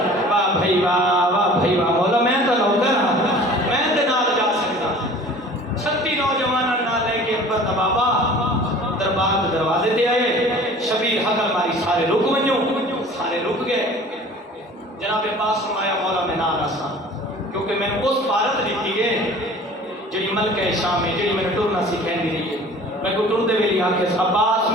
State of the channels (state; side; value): normal; both; correlation 0.45